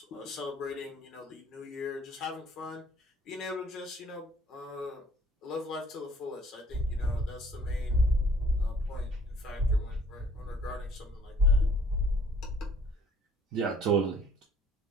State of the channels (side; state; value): both; normal; correlation 0.57